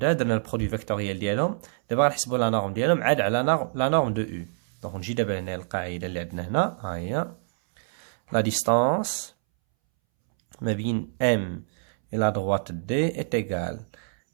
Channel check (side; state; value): left; silent; 61 dB below the other